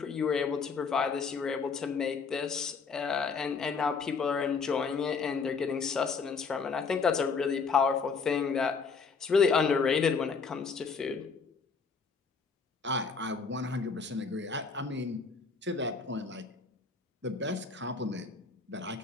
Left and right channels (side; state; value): right; quieter; 5.1 dB